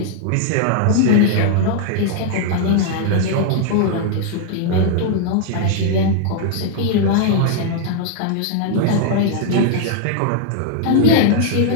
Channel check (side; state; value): both; different; correlation 0.00